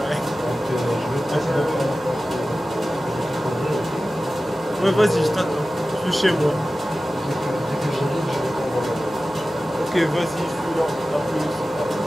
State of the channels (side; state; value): right; noise; hum, 25 dB below the sound